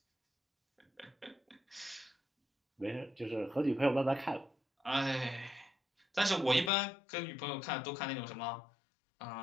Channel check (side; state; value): right; drops out; at 6.7 s